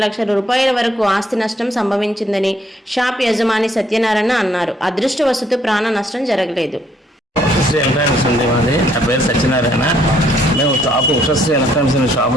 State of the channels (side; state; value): both; normal; correlation 0.67